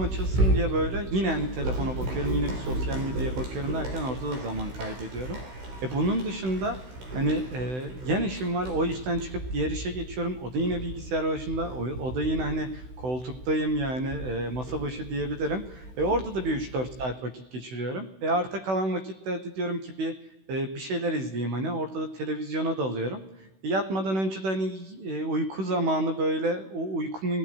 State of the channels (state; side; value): late; left; 16 ms